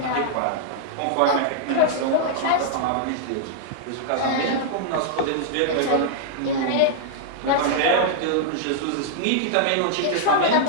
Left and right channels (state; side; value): different; both; correlation -0.01